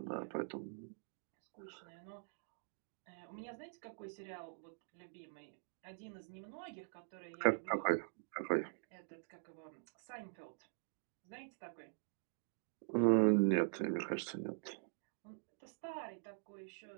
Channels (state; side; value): silent; left; digital silence